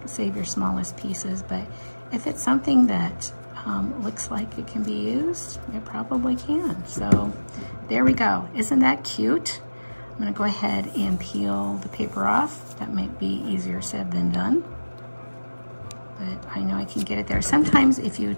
save your smallest pieces, but if it's something that looks like it can be used, it probably can. So there we go. Isn't that cute? I'm gonna go ahead and peel the paper off. That might be easier said than done, but I know I can get it there. Sometimes if you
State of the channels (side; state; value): both; inverted; correlation -1.00